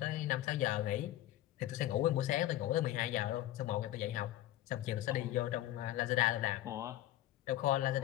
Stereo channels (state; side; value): quieter; right; 14.2 dB